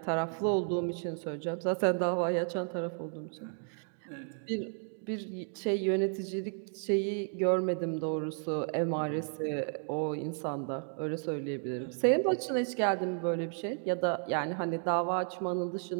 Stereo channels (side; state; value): left; silent; 56 dB below the other